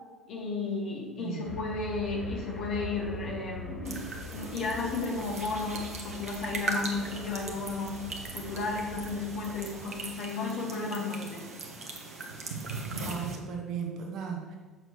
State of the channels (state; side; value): normal; both; correlation 0.33